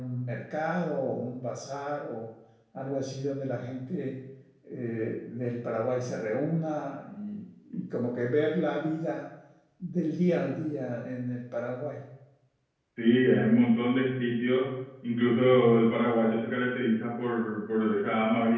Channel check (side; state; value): both; identical; correlation 1.00